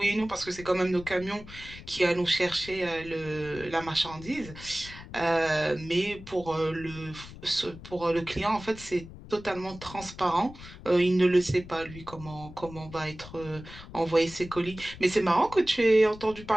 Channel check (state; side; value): noise; left; rumble, 16 dB below the sound